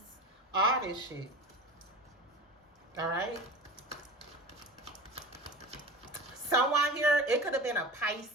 all this shit. Alright? Someone here, it could have been a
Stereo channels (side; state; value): both; normal; correlation 0.34